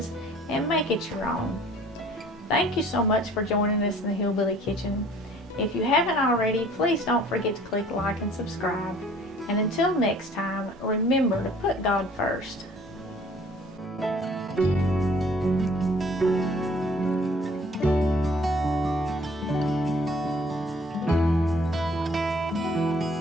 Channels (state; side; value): normal; both; correlation 0.55